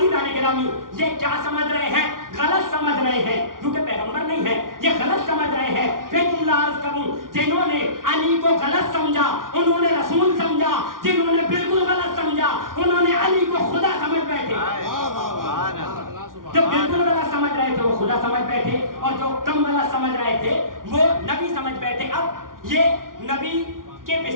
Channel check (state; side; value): late; left; 0.90 ms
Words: گرامی، یہ کیا سمجھ رہے ہیں؟ غلط سمجھ رہے ہیں، کیونکہ پیغمبر نہیں ہے، یہ غلط سمجھ رہے ہیں۔ پھر تم عرض کروں، جنہوں نے علی کو غلط سمجھا انہوں نے رسول سمجھا، جنہوں نے بالکل غلط سمجھا انہوں نے علی کو خدا سمجھ بیٹھے۔ جو بالکل غلط سمجھ رہے تھے وہ خدا سمجھ بیٹھے، اور جو کم غلط سمجھ رہے تھے وہ نبی سمجھ بیٹھے۔ اب یہ نبی کے